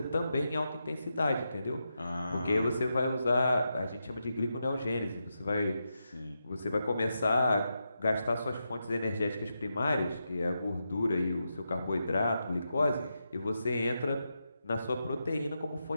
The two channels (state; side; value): inverted; both; correlation -0.86